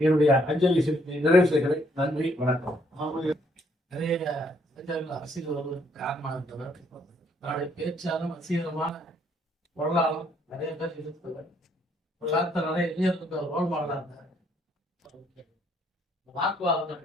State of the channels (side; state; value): both; normal; correlation 0.68